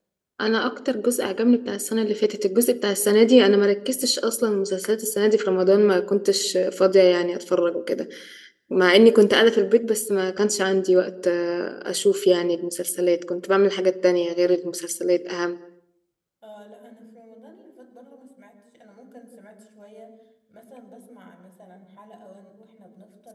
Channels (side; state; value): both; identical; correlation 1.00